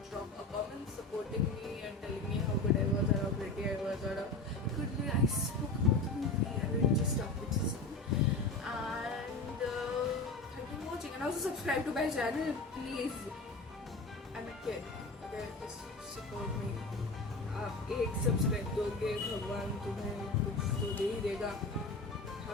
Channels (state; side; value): quieter; right; 3.2 dB